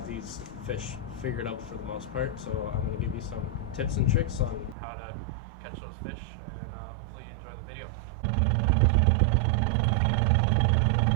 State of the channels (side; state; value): left; drops out; at 4.8 s